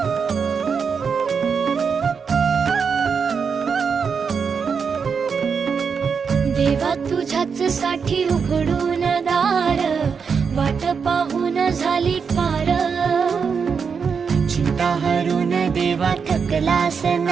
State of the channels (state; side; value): quieter; left; 6.0 dB